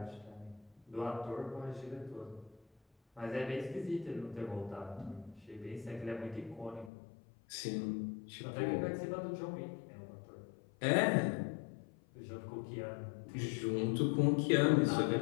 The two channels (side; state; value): right; drops out; at 6.9 s